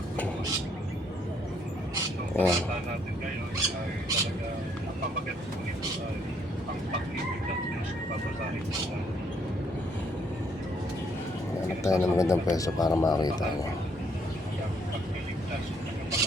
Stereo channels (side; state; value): both; normal; correlation 0.69